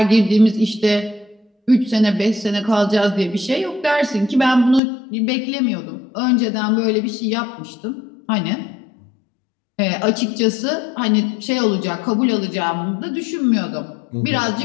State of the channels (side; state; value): right; drops out; at 4.8 s